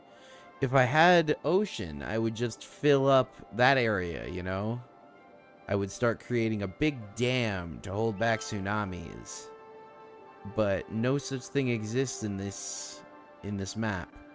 If I had ocean, I would just fill up that area, you know? I would start creating a big dam to hold back tsunamis. But no such thing exists in this map.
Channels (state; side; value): identical; both; correlation 1.00